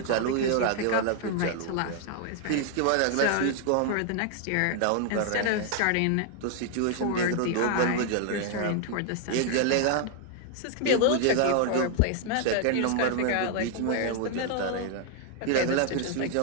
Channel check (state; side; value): different; both; correlation 0.00